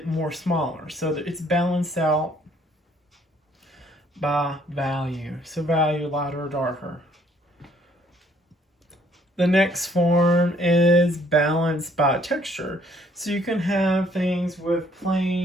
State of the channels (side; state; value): both; normal; correlation 0.64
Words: more smaller. So that it's balanced out by value. So value, lighter or darker. The next form is balance by texture. So you can have things with